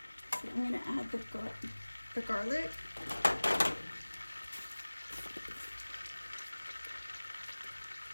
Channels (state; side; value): inverted; both; correlation -1.00